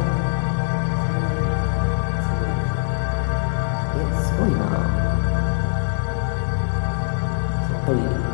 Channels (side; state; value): right; silent; digital silence